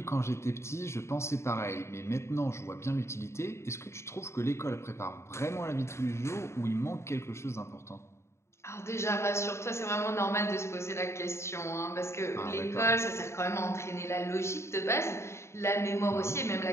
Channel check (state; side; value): late; right; 0.13 ms